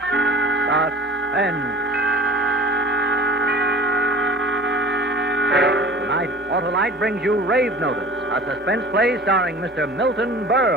Suspense. Tonight, Auto-Lite brings you Rave Notice, a suspense play starring Mr. Milton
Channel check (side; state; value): both; normal; correlation 0.42